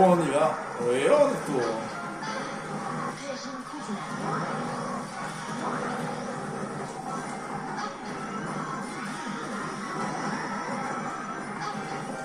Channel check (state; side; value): identical; both; correlation 1.00